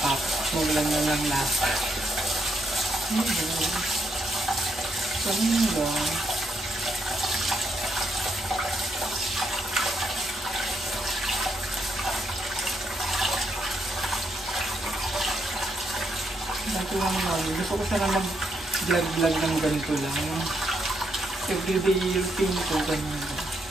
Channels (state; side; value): normal; both; correlation 0.77